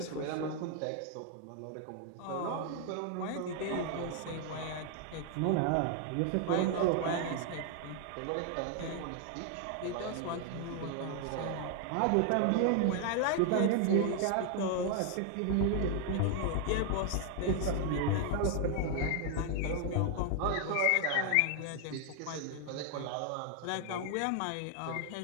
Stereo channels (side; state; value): both; different; correlation 0.00